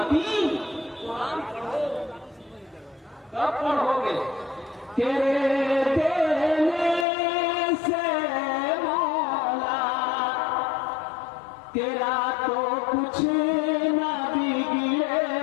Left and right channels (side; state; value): right; drops out; at 7.1 s